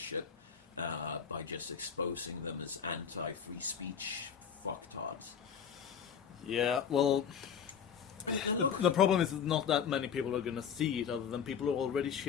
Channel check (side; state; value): right; quieter; 7.4 dB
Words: by just exposing them as anti-free speech fucktards. Yeah, well, the problem is not that many people are going to see it, other than people who already